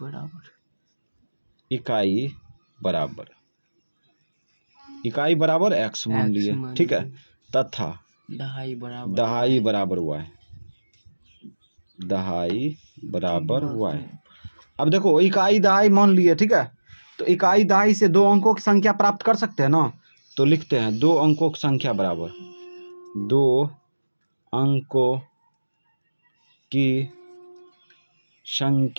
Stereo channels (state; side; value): inverted; both; correlation -1.00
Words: बराबर x मान लिए। ठीक है, तथा दहाई बराबर y। दहाई बराबर y। अब देखो इकाई दहाई मान लिए। ठीक है, तो इकाई दहाई से 2 अंकों की संख्या प्राप्त कर सकते हैं ना। तो लिखते हैं 2 अंकों की संख्या बराबर 2 अंकों की